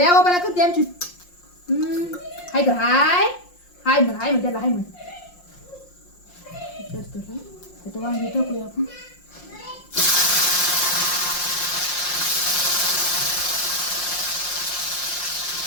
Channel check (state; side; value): late; right; 5.6 ms